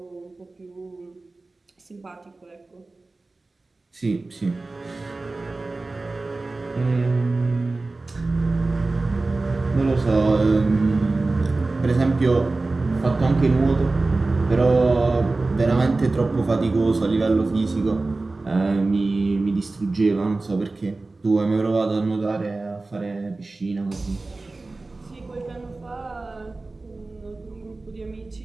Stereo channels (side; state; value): left; quieter; 3.3 dB